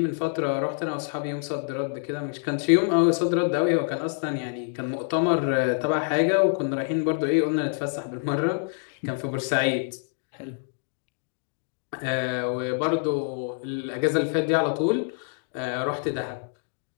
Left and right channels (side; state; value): right; silent; digital silence